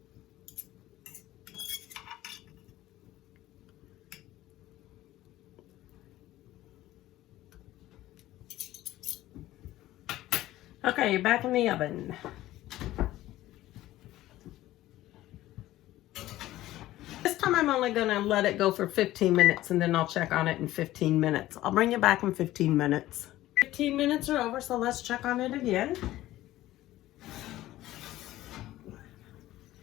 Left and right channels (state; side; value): quieter; right; 15.4 dB